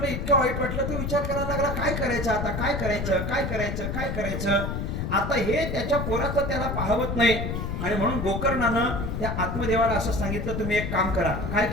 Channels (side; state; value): left; noise; rumble, 3 dB below the sound